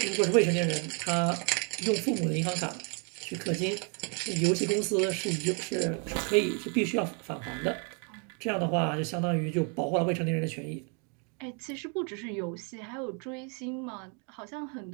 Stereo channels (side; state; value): left; quieter; 37.4 dB